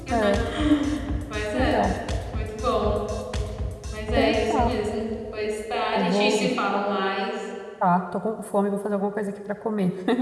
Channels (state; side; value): identical; both; correlation 1.00